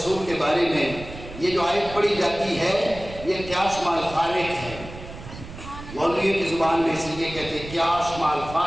کے بارے میں یہ جو آیت پڑھی جاتی ہے یہ قیاس مع الفارق ہے. مولویوں کی زبان میں اس لیے کہتے ہیں قیاس مع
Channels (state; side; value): noise; right; rumble, 13 dB below the sound